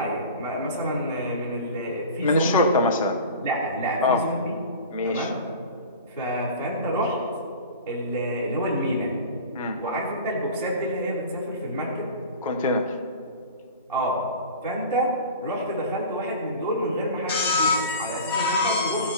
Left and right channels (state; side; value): inverted; both; correlation -0.36